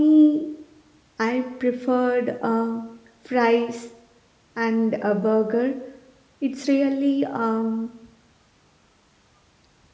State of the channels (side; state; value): both; identical; correlation 1.00